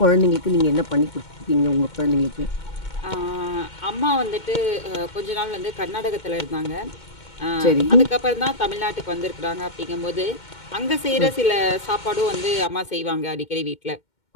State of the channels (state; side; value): late; right; 2.2 ms